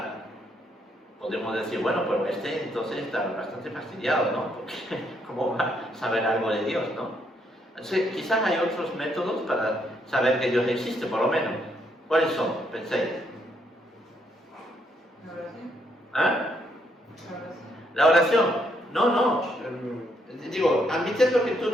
Podemos decir, bueno, pero entonces está bastante fastidiado, ¿no? Porque ¿cómo va a saber algo de Dios, no? Entonces, quizás hay otros métodos para saber que Dios existe, por lo menos. ¿Cuáles son? Penséis. La oración. ¿Ah? La oración. La oración. No. Digo, admitiendo que tú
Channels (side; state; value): both; normal; correlation 0.73